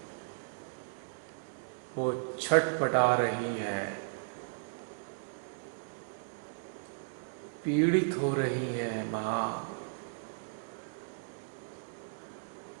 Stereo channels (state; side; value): silent; left; digital silence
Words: वो छटपटा रही है, पीड़ित हो रही है मां।